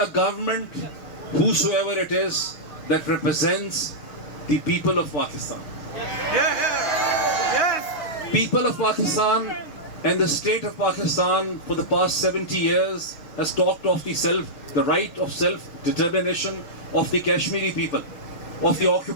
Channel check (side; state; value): right; late; 6.4 ms